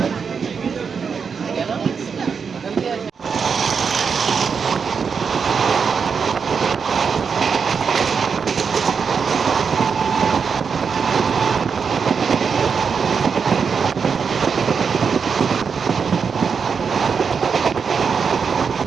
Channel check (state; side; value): quieter; left; 6.0 dB